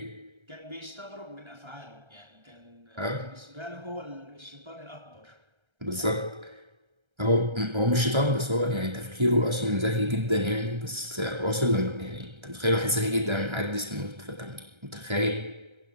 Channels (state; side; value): late; left; 1.3 ms